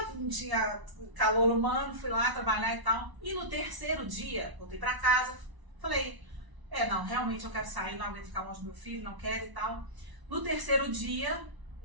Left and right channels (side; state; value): left; late; 1.0 ms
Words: não tinha calor humano, fui lá trabalhar e tal. E no terceiro dia, voltei pra casa, falei, não, realmente eu quero sair, não aguento ficar longe do meu filho, não quero e tal. No terceiro dia,